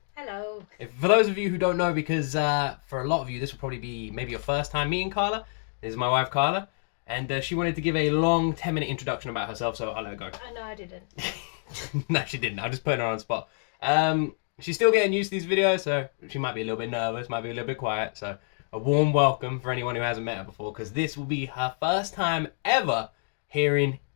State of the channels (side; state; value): right; silent; digital silence